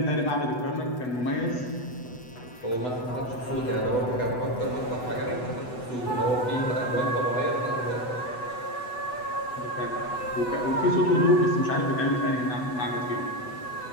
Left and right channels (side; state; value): right; late; 8.0 ms